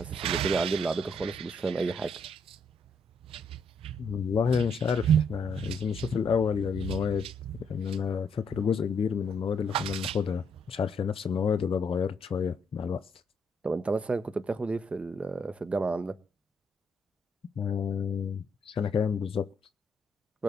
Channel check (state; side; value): normal; both; correlation 0.72